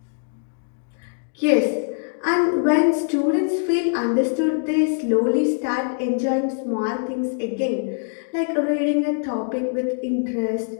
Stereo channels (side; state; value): right; silent; digital silence